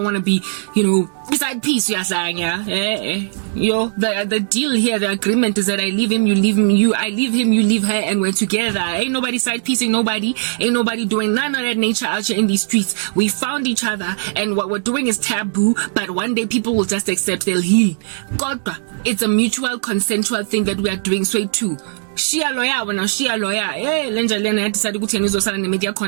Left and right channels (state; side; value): silent; left; 67 dB below the other